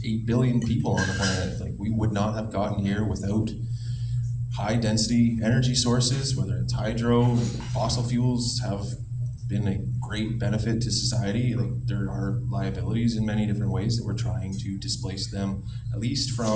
8 billion people on the planet. Like, we would not have gotten here without high density energy sources, whether it's hydro, fossil fuels have been a great benefit to society. Like, there are liabilities in many different ways that we're trying to displace them, at least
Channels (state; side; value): identical; both; correlation 1.00